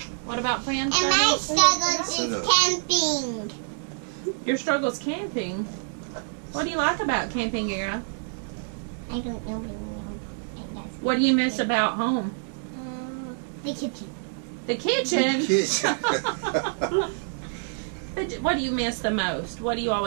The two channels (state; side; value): silent; left; digital silence